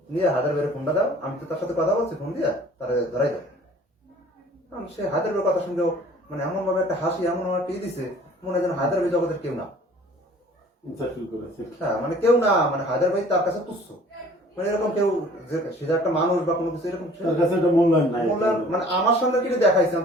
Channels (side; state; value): both; normal; correlation 0.51